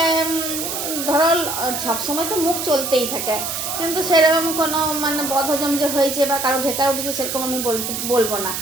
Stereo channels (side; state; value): right; noise; hiss, 4 dB below the sound